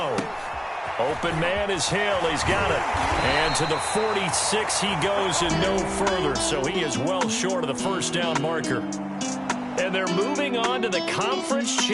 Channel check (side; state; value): both; identical; correlation 1.00